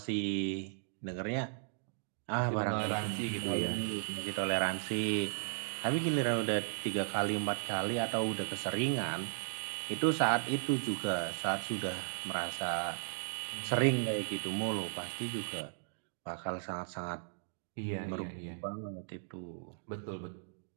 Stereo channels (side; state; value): left; silent; digital silence